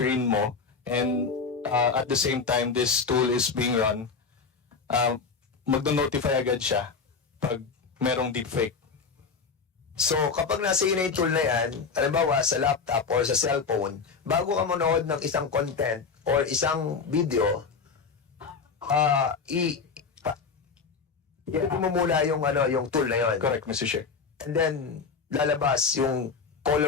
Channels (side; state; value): right; quieter; 5.2 dB